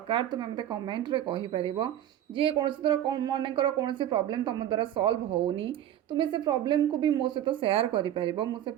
तुम्हें मते कमेंट रे कहि परिबो जे कौन तरह मनकर कौन प्रॉब्लम तुम द्वारा सॉल्व होनी तुम्हें से प्रॉब्लम को भी मो सहित शेयर करि परिबो मु से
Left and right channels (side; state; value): left; quieter; 11.5 dB